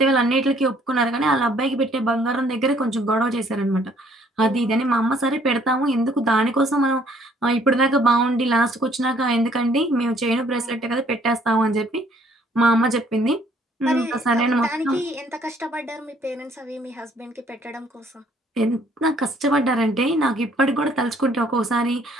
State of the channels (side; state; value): both; normal; correlation 0.62